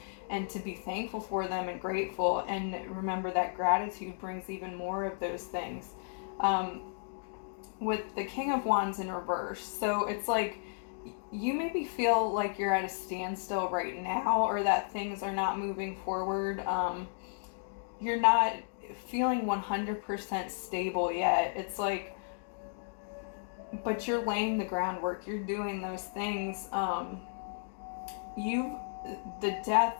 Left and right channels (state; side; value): silent; right; digital silence